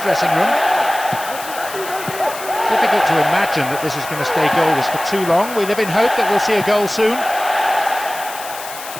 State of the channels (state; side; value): noise; left; hiss, 12 dB below the sound